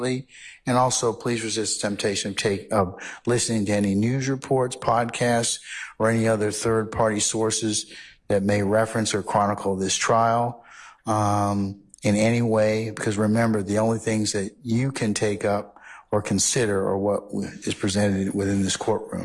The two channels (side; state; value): both; identical; correlation 1.00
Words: And also, please resist the temptation of listening to any news reports, podcasts, or any other third-party sources that may reference or chronicle this trial in any way. Because remember, the only things that you can take up or consider are what is presented within this